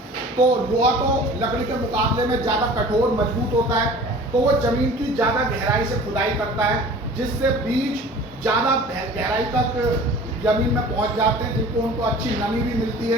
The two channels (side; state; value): both; normal; correlation 0.44